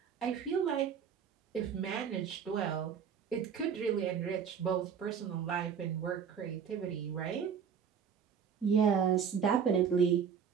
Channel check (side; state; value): left; quieter; 7.2 dB